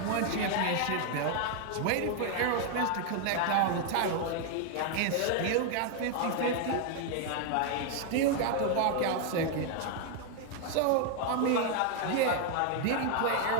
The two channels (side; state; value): both; different; correlation 0.00